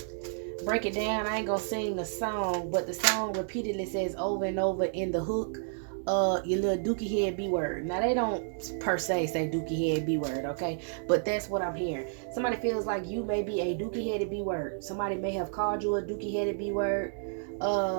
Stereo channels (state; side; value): silent; left; digital silence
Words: break it down. I ain't going to sing the song, but the song repeatedly says over and over in the hook, your little dookie head B word. Now they don't per se say dookie head B word, okay? But that's what I'm hearing. Somebody feels like you may be a dookie headed B word. Somebody may have called you a dookie headed B word.